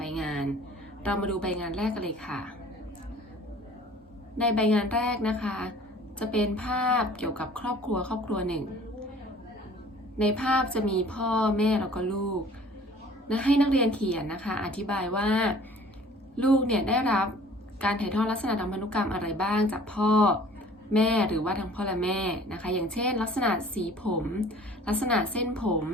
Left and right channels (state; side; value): normal; both; correlation 0.50